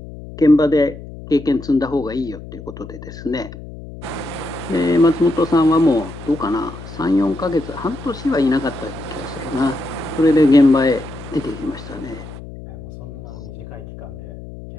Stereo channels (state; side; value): noise; left; hum, 14 dB below the sound